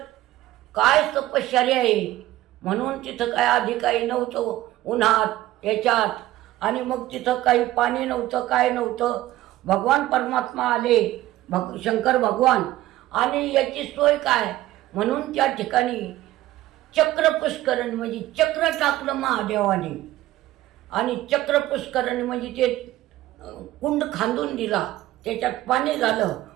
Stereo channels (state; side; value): quieter; left; 15.6 dB